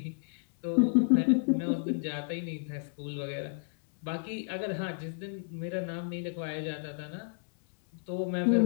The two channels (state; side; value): silent; right; 57 dB below the other